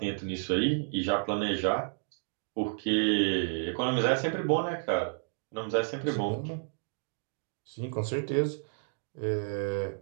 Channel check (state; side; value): silent; left; digital silence